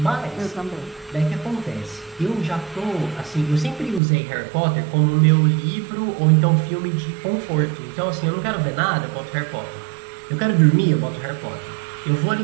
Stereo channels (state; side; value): drops out; left; at 4.0 s